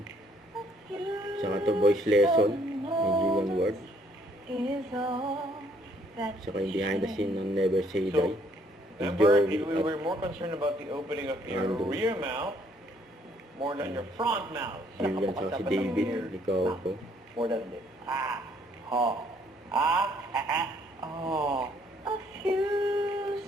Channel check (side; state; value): both; normal; correlation 0.64